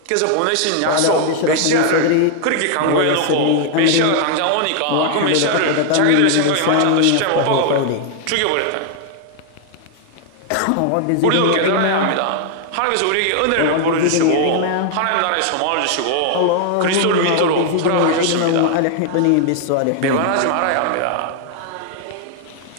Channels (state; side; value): different; both; correlation 0.00